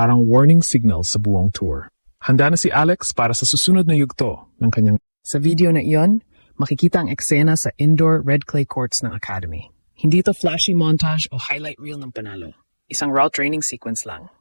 warning signal sa buong tour. Handa na si Alex para sa susunod na yugto ng kanyang... Sa video na iyon, makikita ang eksena sa indoor red clay courts ng academy. Hindi ito flashy montage o highlight reel ng panalo. Isang raw training sequence lang.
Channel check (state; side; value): inverted; both; correlation -1.00